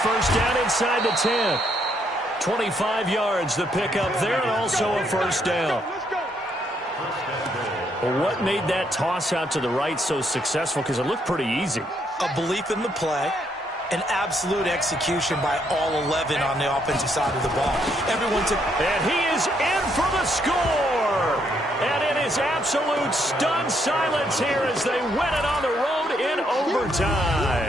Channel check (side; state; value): both; normal; correlation 0.73